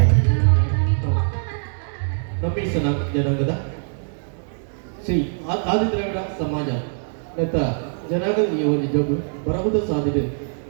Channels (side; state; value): left; silent; digital silence